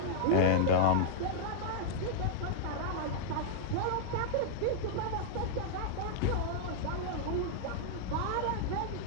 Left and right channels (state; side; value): different; both; correlation -0.01